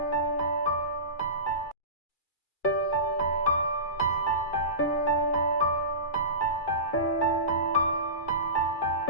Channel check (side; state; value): right; late; 2.3 ms